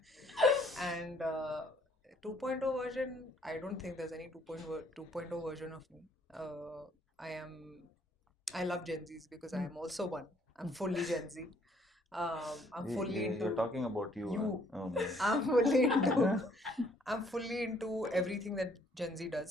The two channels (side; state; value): both; normal; correlation 0.64